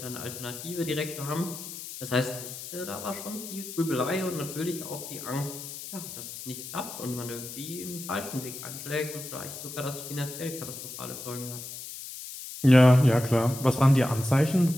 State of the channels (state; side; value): noise; left; hiss, 10 dB below the sound